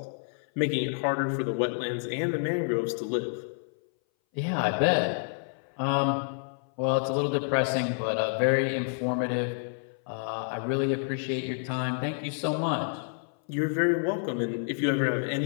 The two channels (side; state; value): right; silent; 59 dB below the other